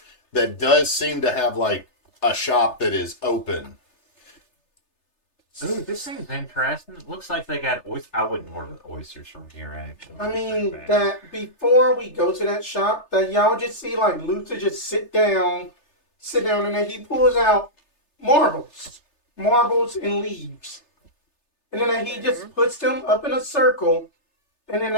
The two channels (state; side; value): late; right; 3.3 ms